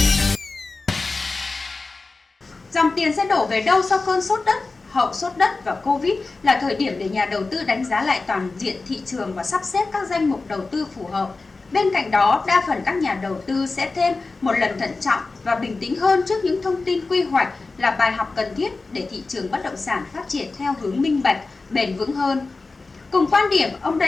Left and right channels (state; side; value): quieter; right; 3.7 dB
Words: Dòng tiền sẽ đổ về đâu sau cơn sốt đất? Hậu sốt đất và Covid là thời điểm để nhà đầu tư đánh giá lại toàn diện thị trường và sắp xếp các danh mục đầu tư phù hợp. Bên cạnh đó, đa phần các nhà đầu tư sẽ thêm một lần thận trọng và bình tĩnh hơn trước những thông tin quy hoạch là bài học cần thiết để thị trường bất động sản phát triển theo hướng minh bạch, bền vững hơn. Cùng quan điểm, ông